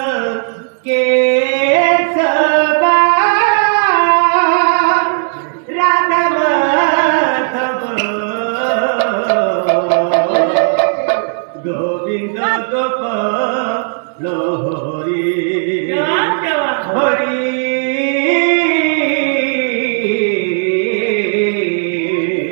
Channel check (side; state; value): left; silent; 65 dB below the other